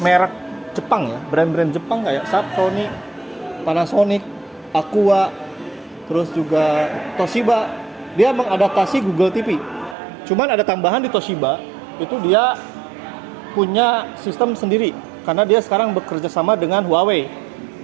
merek Jepang ya, brand-brand Jepang kayak Sony, Panasonic, Aqua, terus juga Toshiba, dia mengadaptasi Google TV. Cuman ada tambahan di Toshiba, itu dia punya sistem sendiri karena dia sekarang bekerja sama dengan Huawei.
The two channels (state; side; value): drops out; left; at 10.0 s